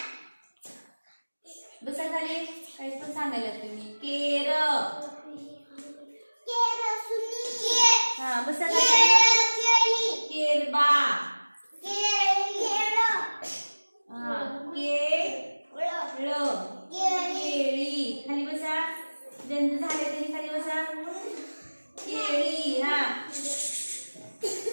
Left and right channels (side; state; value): both; inverted; correlation -1.00